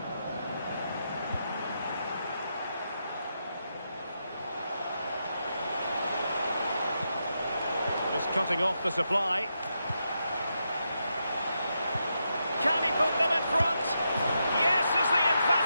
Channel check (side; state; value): both; inverted; correlation -0.84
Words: Just cutting off the supply. Can he put them in front? Yes is the